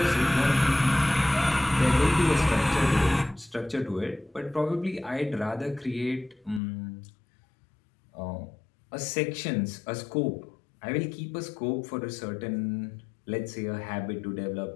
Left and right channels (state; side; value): drops out; right; at 6.6 s